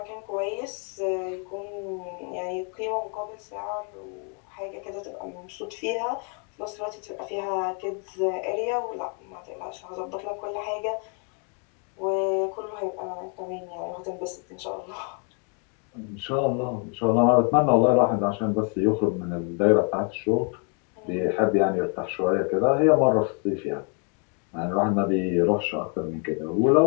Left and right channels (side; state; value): right; quieter; 39.2 dB